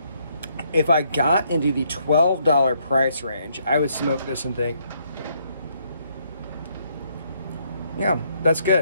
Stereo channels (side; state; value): both; inverted; correlation -0.71